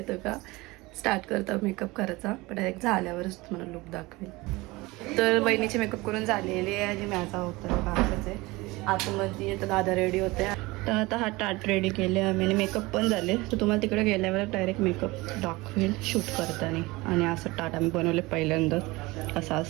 का. स्टार्ट करता मेकअप करायचा पण एक झाल्यावरच तुम्हाला लुक दाखवेल. तर वहिनीची मेकअप करून झालेली आहे आणि माझा होता काकाच आहे आतमध्ये. तर दादा रेडी होते. तर आता हा टाट रेडी केले आम्ही आणि मेकअप पण झाले. तर तुम्हाला तिकडे गेल्यावर डायरेक्ट मेकअप दाखवेल शूट करताना. आणि असं टाट आम्ही बनवले पहिल्यांदा. असं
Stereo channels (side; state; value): left; quieter; 22.0 dB